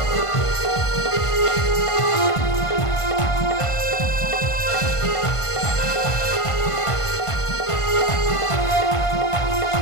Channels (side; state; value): right; late; 1.5 ms